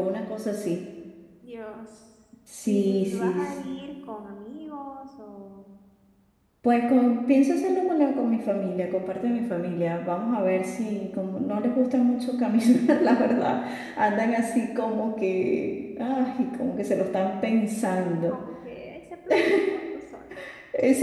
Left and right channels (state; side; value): identical; both; correlation 1.00